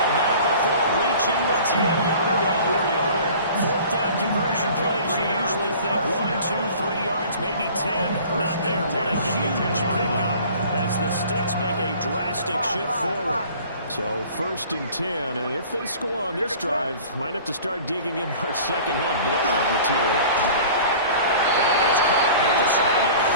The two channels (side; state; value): both; inverted; correlation -0.45